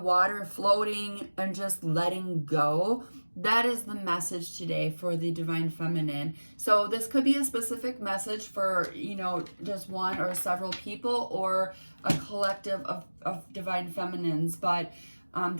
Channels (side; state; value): both; inverted; correlation -1.00